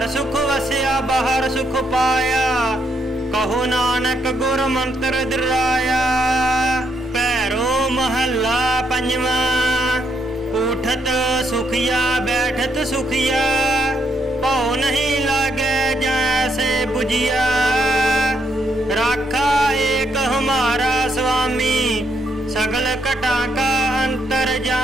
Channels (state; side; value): normal; both; correlation 0.76